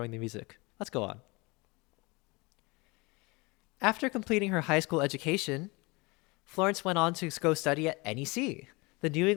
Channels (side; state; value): right; quieter; 26.0 dB